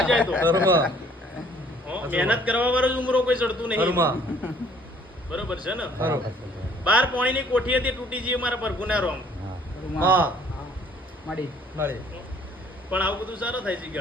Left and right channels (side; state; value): both; normal; correlation 0.59